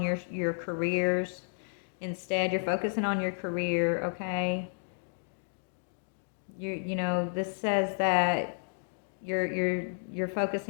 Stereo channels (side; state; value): right; silent; digital silence